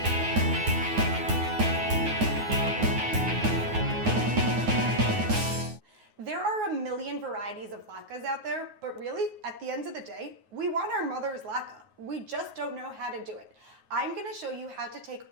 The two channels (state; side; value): late; left; 9.4 ms